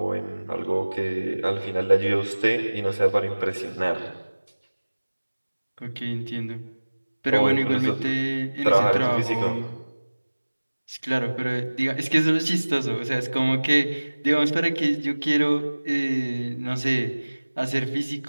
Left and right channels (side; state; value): both; inverted; correlation -1.00